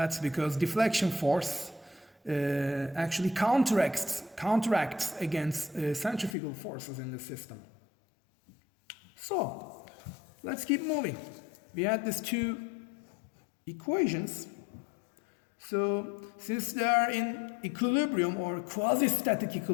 because deflection force actually counteracts against centrifugal forces in the system. So, let's keep moving. We had these two equations. So, since they are in equilibrium or quasi-static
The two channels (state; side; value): drops out; right; at 6.4 s